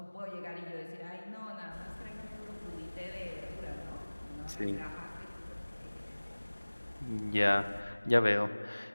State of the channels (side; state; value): both; inverted; correlation -1.00